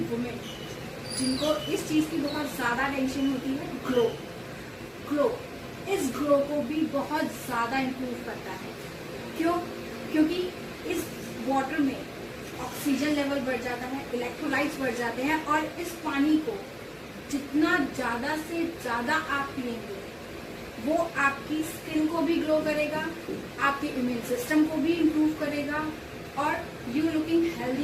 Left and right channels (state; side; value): identical; both; correlation 1.00